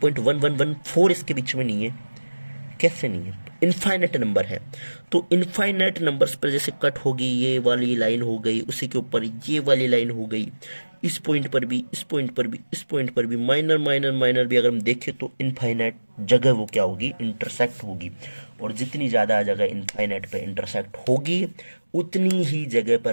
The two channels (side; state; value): both; inverted; correlation -1.00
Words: इसके बीच में नहीं है, कैसे नहीं है, इनफाइनाइट नंबर है। तो इनफाइनाइट नंबर्स पर जैसे कट होगी, ये वाली लाइन हो गई, उसी के ऊपर ये वाली लाइन हो गई, इस पॉइंट पर भी, इस पॉइंट पर भी, इस पॉइंट पर भी, माइनर माइनर माइनर भी अगर हम देखें तो इनफाइनाइट जगह वो क्या होगी, इंटरसेक्ट होगी। और जितनी ज़्यादा जगह इनफाइनाइट पे इंटरसेक्ट होगी, उतनी ही जगह